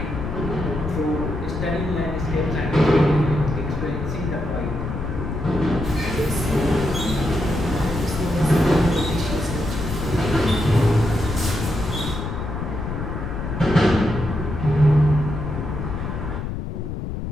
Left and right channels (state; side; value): noise; left; rumble, 5 dB below the sound